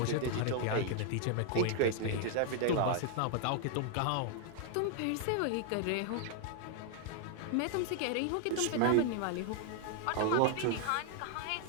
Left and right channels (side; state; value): both; different; correlation 0.00